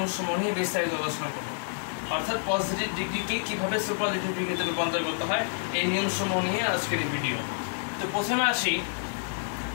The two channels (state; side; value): silent; right; digital silence